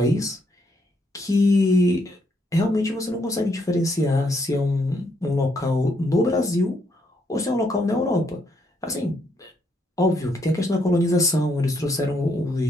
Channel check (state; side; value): normal; both; correlation 0.74